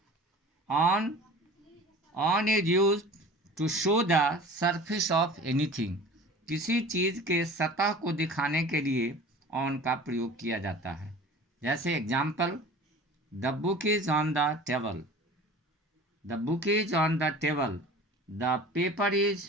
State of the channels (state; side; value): normal; both; correlation 0.41